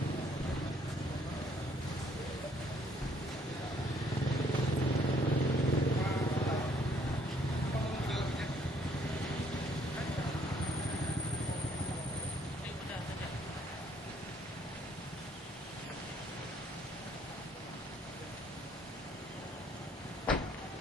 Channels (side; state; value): both; normal; correlation 0.65